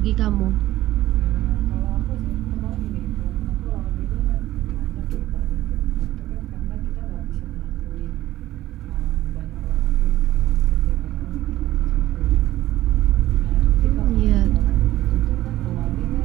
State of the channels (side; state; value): left; quieter; 15.1 dB